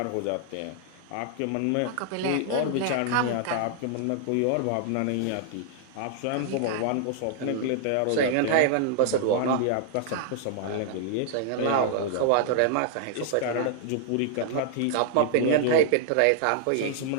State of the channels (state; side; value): different; both; correlation -0.01